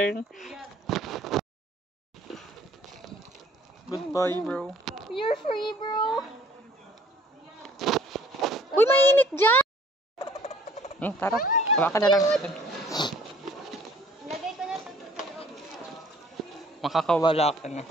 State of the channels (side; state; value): both; normal; correlation 0.56